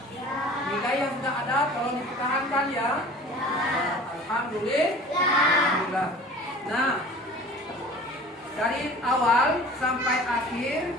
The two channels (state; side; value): normal; both; correlation 0.43